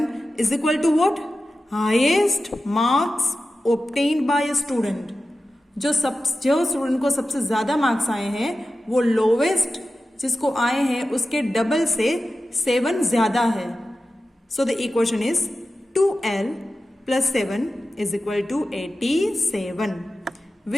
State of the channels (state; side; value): normal; both; correlation 0.94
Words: is equal to what? Highest marks obtained by a student. जो student को सबसे ज्यादा marks आए हैं वो lowest जिसको आए हैं उसके डबल से 7 ज्यादा है. So the equation is 2L plus 7 is equal to 87,